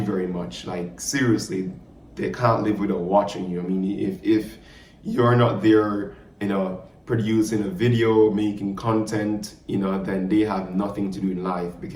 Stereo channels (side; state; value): both; identical; correlation 1.00